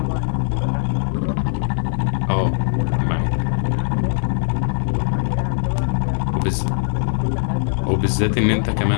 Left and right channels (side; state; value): right; silent; 61 dB below the other